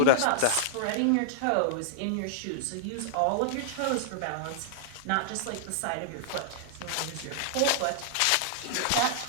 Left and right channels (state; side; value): different; both; correlation -0.01